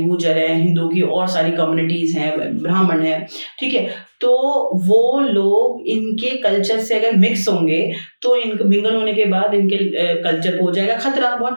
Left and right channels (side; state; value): both; inverted; correlation -1.00